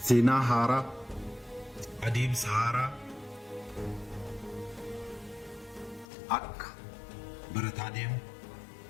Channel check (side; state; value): right; drops out; at 6.1 s